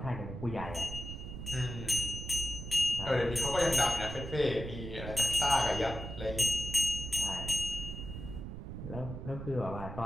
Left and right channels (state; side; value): noise; right; rumble, 8 dB below the sound